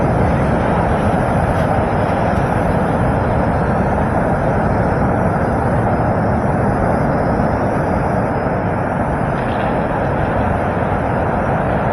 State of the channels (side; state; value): both; identical; correlation 1.00